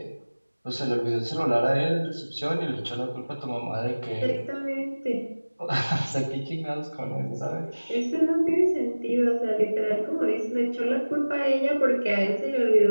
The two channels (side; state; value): both; inverted; correlation -1.00